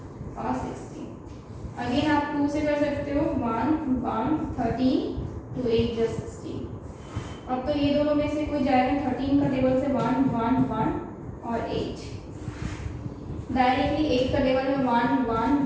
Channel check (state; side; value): identical; both; correlation 1.00